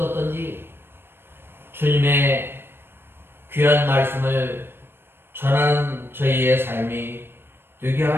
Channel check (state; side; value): late; left; 0.11 ms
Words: 주님의 귀한 말씀을 전하는 저희의 삶이 되게